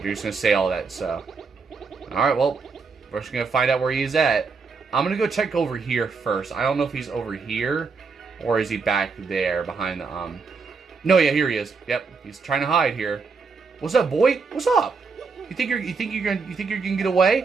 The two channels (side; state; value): left; quieter; 4.8 dB